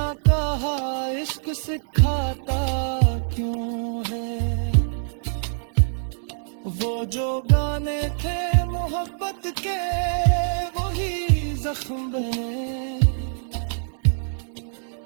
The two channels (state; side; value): silent; left; digital silence